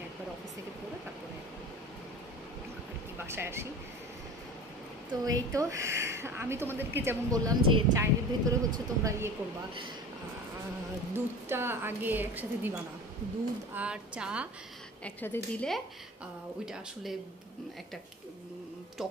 একবার অফিস থেকে পড়ে তারপরে আর কি বাসায় আসি। তো এই তো আমি তোমাদেরকে যেমন বললাম যে চায়ের ভেতরে হচ্ছে তোমরা ইয়ে করবা, দুধটা আগে একসাথে দিবা না, দুধ আর চা একসাথে দিলে ওইটা আসলে একটা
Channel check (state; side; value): normal; both; correlation 0.37